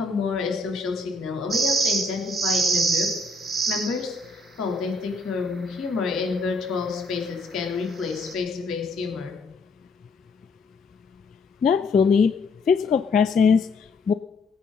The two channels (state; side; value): quieter; right; 3.3 dB